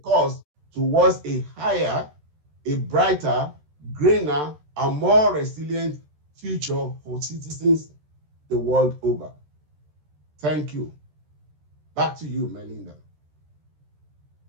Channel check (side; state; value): left; late; 13 ms